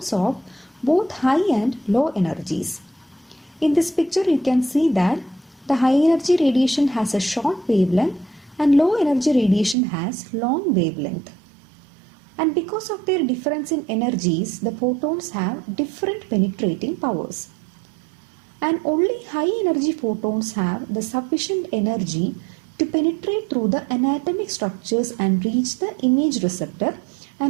of both high and low energies. In this picture, you can see that the high energy radiation has a short wavelength and low energy radiation has long wavelength. And because of their difference in energies, the photons have different penetrating powers. And only high energy photons have the sufficient energy to penetrate through the anatomic structures and reach the image receptor,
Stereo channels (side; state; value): left; drops out; at 9.8 s